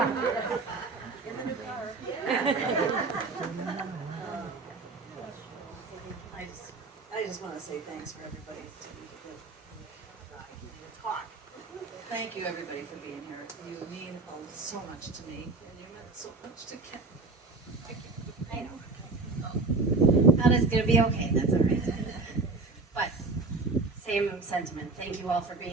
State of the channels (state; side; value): quieter; left; 3.8 dB